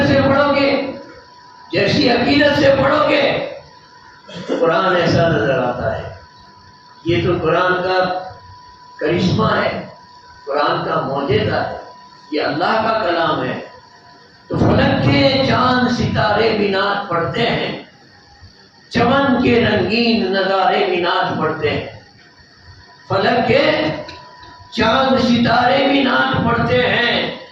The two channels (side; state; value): both; identical; correlation 1.00